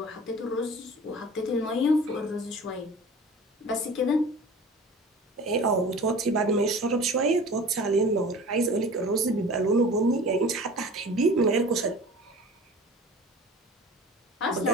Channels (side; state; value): both; normal; correlation 0.41